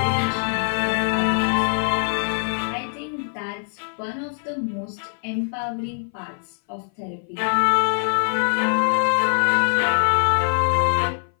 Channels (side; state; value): right; silent; 59 dB below the other